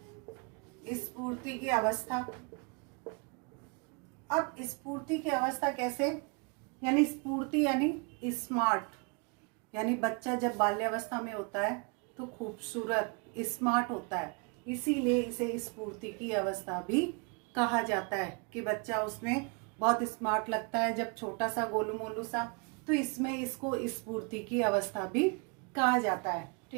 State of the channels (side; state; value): left; quieter; 33.6 dB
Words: स्फूर्ति की अवस्था। अब स्फूर्ति की अवस्था कैसे? यानी स्फूर्ति यानी स्मार्ट, यानी बच्चा जब बाल्यावस्था में होता है तो खूबसूरत, स्मार्ट होता है, इसीलिए इसे स्फूर्ति की अवस्था भी कहा जाता है। कि बच्चा उसमें बहुत स्मार्ट लगता है जब छोटा सा गोलू मोलू सा, तो इसमें इसको स्फूर्ति की अवस्था भी कहा जाता है,